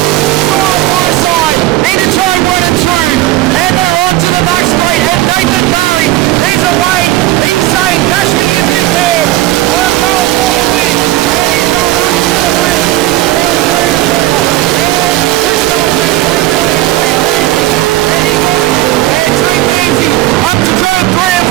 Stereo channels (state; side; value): quieter; left; 15.8 dB